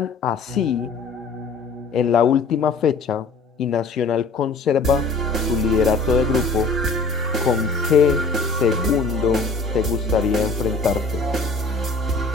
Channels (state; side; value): quieter; right; 3.8 dB